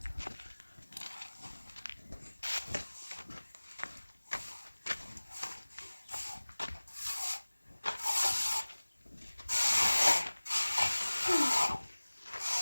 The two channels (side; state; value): both; inverted; correlation -1.00